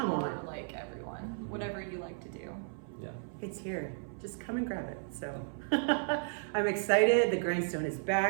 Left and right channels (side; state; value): left; silent; 55 dB below the other